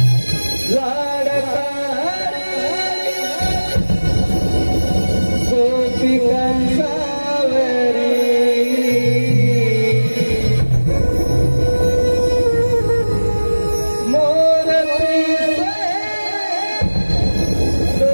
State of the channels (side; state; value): both; inverted; correlation -1.00